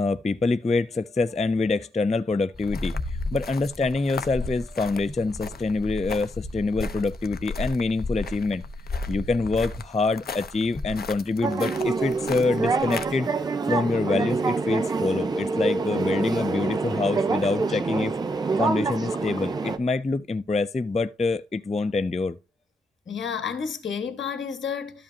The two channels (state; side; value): normal; both; correlation 0.80